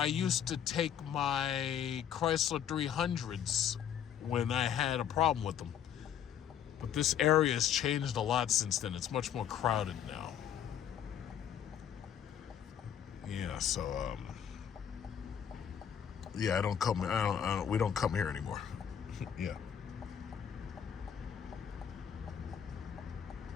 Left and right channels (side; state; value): right; quieter; 9.1 dB